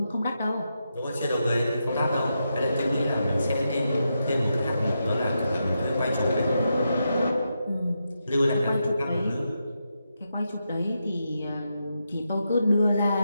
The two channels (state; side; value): inverted; both; correlation -0.85